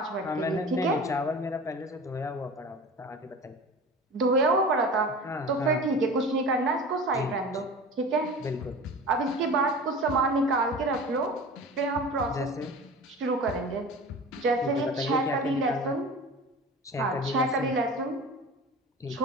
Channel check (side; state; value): both; normal; correlation 0.36